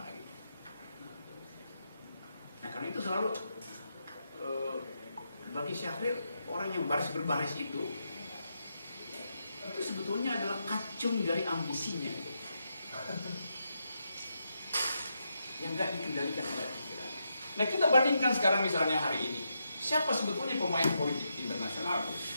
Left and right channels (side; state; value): both; inverted; correlation -0.83